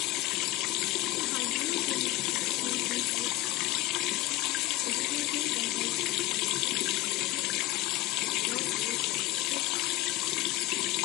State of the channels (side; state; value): right; quieter; 18.0 dB